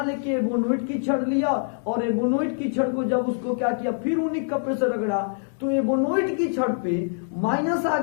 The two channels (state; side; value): silent; right; digital silence